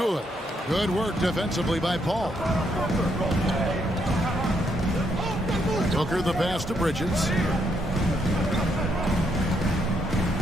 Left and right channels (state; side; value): normal; both; correlation 0.75